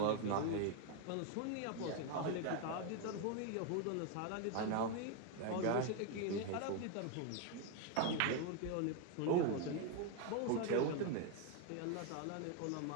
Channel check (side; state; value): both; different; correlation 0.01